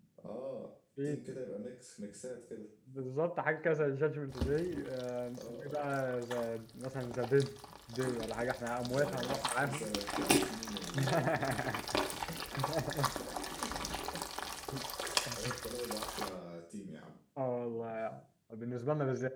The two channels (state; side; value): identical; both; correlation 1.00